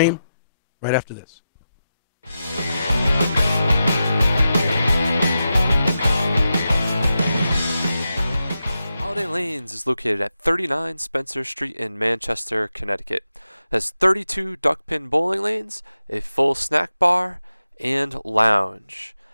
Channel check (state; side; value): inverted; both; correlation -0.90